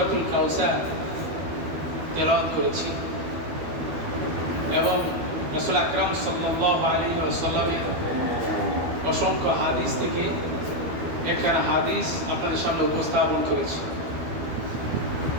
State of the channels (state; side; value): late; left; 12 ms